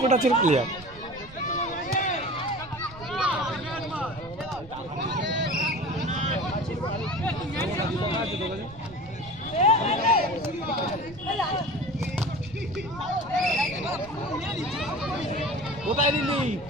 টাচের প্লেয়ার। কোথায় দিলি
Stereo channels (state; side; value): noise; right; rumble, 19 dB below the sound